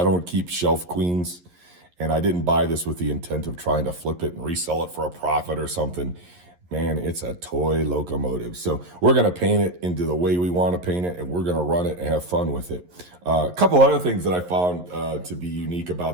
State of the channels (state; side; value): late; left; 11 ms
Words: keep shelf queens, and I didn't buy this with the intent of trying to flip it and resell it for a profit or something. Man, it's a toy locomotive. So we're gonna paint it into the way we want to paint it, and we're gonna run it and have fun with it. A couple other things that I found to be unique